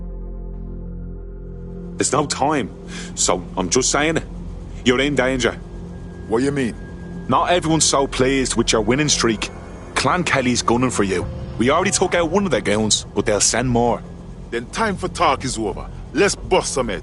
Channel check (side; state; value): both; identical; correlation 1.00